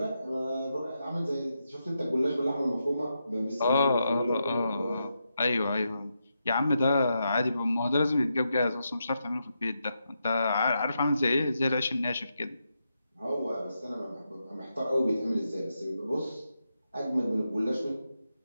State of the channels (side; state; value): both; inverted; correlation -0.85